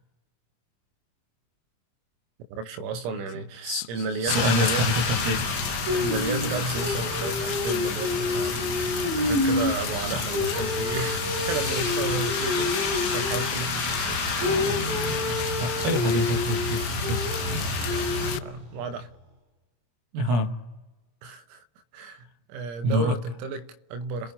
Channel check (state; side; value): late; left; 25 ms